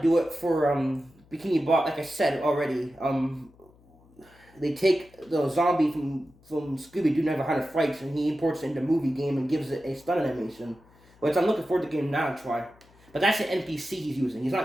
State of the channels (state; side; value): noise; left; hum, 28 dB below the sound